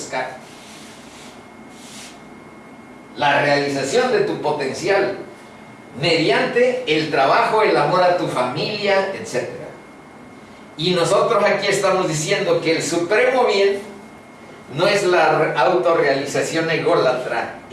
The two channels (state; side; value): identical; both; correlation 1.00